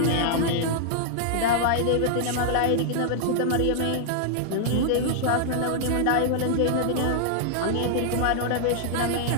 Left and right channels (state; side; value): different; both; correlation -0.01